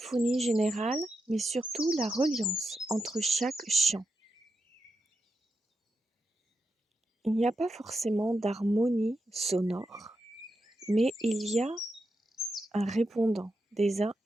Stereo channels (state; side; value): normal; both; correlation 0.86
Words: générale, mais surtout la reliance entre chaque chant. Il n'y a pas forcément d'harmonie sonore, mais il y a un répondant des uns